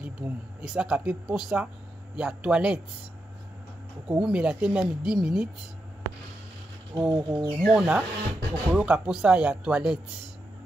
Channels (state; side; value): normal; both; correlation 0.86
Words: esaka mpe posa ya toilette okowumela te meme 10 minutes okomona okoyoka posa ya toilette